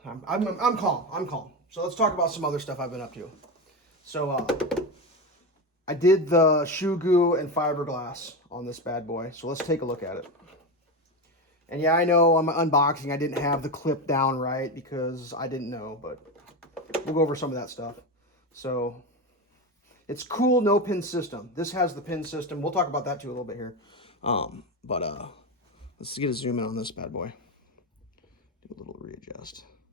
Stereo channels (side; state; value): both; normal; correlation 0.17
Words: I'm calm. I'm calm. So let's talk about some other stuff I've been up to. So I did the shoe goo and fiberglass on this bad boy. So let's take a look at it. And yeah, I know on my unboxing I didn't have the clip down right because I didn't know, but we'll go over some of that stuff. So it's cool, no pin system. This has the pin system. We'll talk about that too a little bit here. Let's get a zoom in on this bad boy. Do a little readjust.